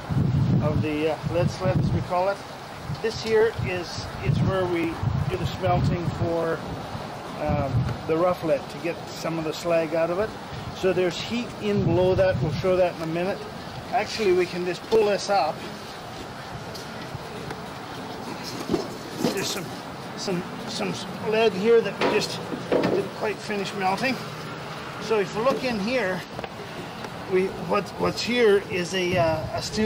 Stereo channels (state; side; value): identical; both; correlation 1.00